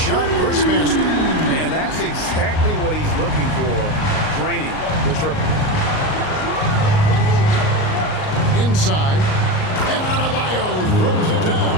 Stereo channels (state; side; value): late; right; 38 ms